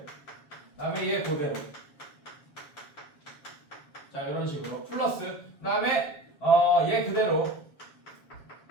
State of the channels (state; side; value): late; right; 7.4 ms